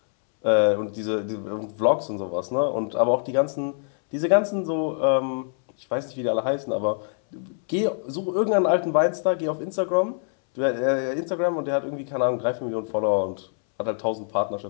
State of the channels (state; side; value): silent; right; 62 dB below the other